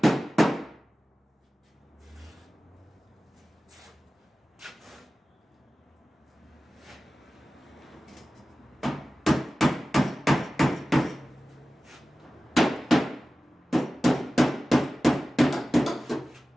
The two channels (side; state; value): both; normal; correlation 0.96